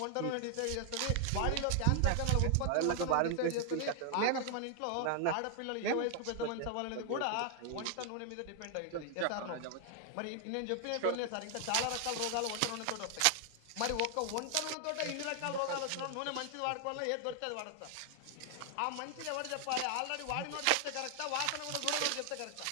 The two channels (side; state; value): both; different; correlation 0.00